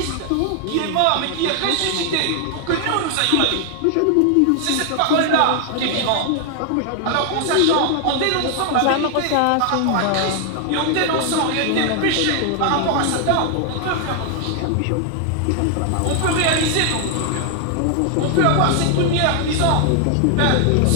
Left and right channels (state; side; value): different; both; correlation 0.00